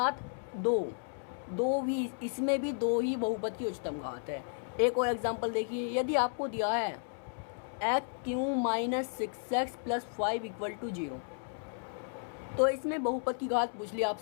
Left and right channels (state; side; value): silent; right; digital silence